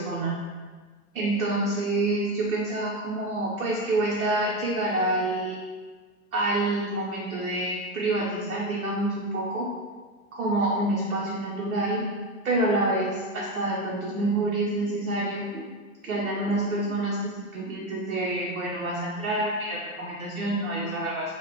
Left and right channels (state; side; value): normal; both; correlation 0.15